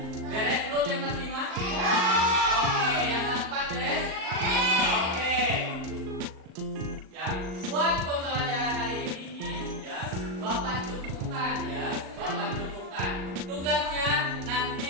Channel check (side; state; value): left; late; 38 ms